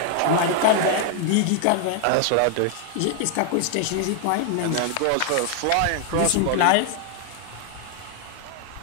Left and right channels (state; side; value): different; both; correlation 0.00